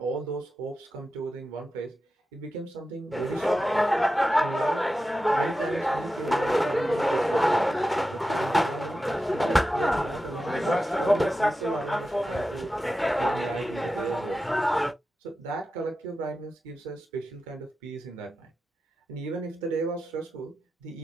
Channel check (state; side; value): normal; both; correlation 0.91